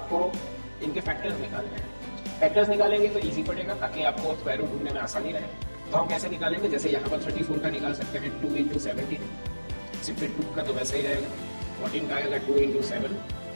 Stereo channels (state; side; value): inverted; both; correlation -1.00